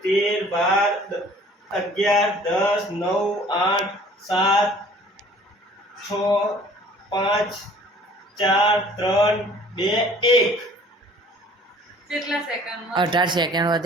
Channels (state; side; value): normal; both; correlation 0.52